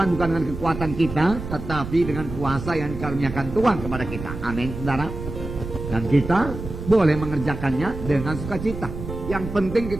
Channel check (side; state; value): right; noise; rumble, 9 dB below the sound